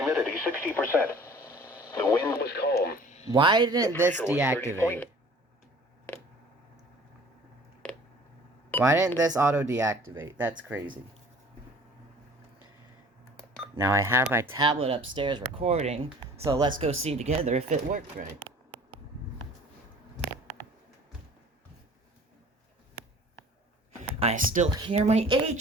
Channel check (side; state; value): both; normal; correlation 0.49